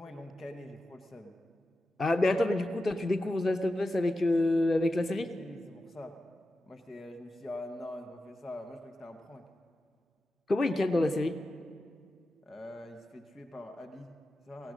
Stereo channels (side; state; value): both; normal; correlation 0.92